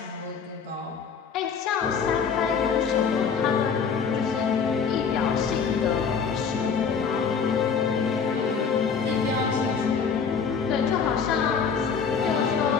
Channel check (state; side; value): quieter; right; 6.1 dB